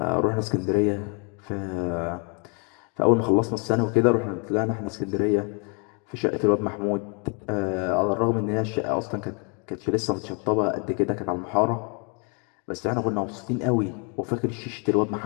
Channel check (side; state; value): right; quieter; 36.0 dB